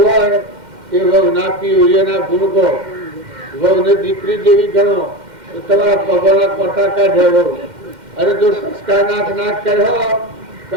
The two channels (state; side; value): late; left; 2.1 ms